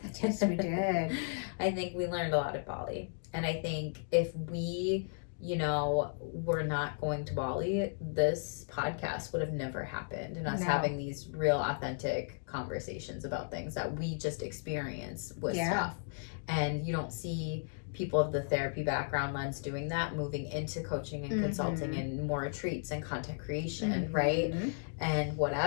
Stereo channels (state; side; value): silent; right; digital silence